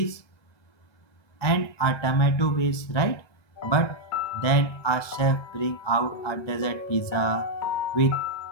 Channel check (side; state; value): right; late; 1.9 ms